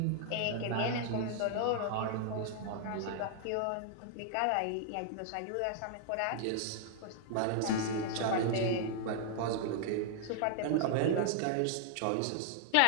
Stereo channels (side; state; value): both; different; correlation 0.00